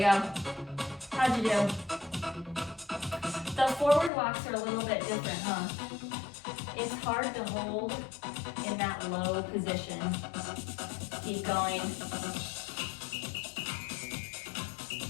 How'd you do? The forward walks are a little bit different, huh? It's hard to hold in that low position. Keep going.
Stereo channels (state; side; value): drops out; right; at 4.1 s